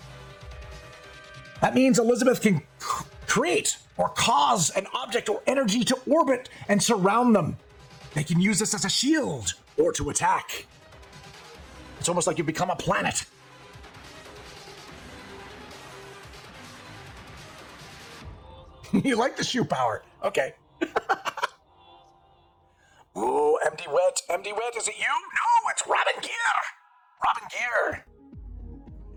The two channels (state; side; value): identical; both; correlation 1.00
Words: That means Elizabeth can create or cause an object or energy to orbit and surround them. They can use this as a shield or to attack. It's almost like you become a planet. You like the shoe power. Okay. MD Wet. MD Wet, is it you? No, it's Robin Gear. Robin Gear.